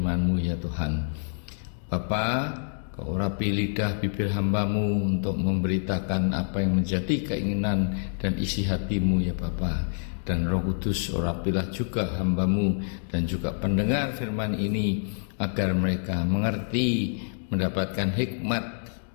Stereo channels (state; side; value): silent; right; digital silence